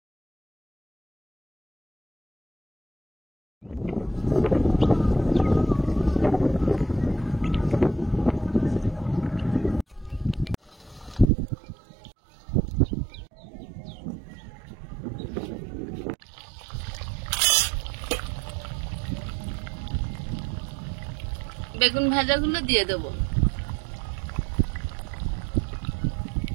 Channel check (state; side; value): drops out; left; at 11.3 s